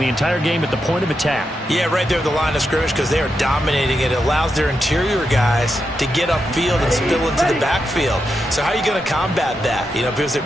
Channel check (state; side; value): normal; both; correlation 0.86